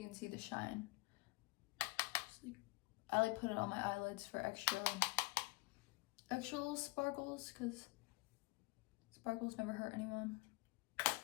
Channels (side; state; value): right; quieter; 24.5 dB